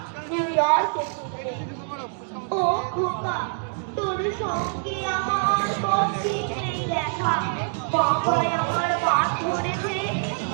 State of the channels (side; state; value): left; silent; 62 dB below the other